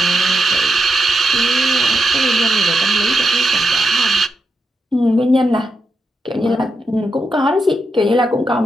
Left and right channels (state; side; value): normal; both; correlation 0.85